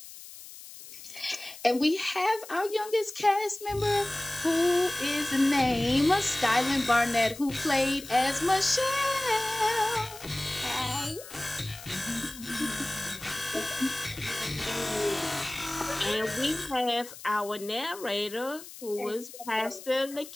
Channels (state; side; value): noise; left; hiss, 15 dB below the sound